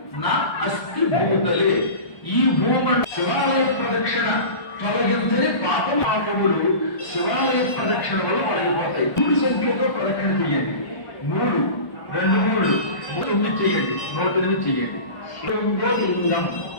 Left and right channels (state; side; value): late; right; 1.3 ms